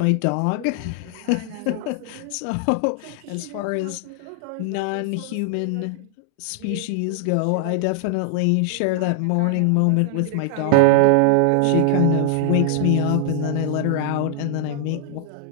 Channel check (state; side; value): different; both; correlation 0.00